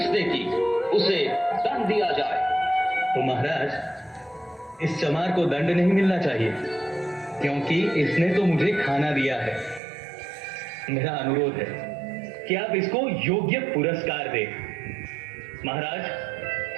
की? उसे दंड दिया जाए। तो महाराज, इस चमार को दंड नहीं मिलना चाहिए, क्योंकि इसने तो मुझे खाना दिया है। मेरा अनुरोध है कि आप इसको योग्य पुरस्कार दें। महाराज,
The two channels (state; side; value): drops out; left; at 9.8 s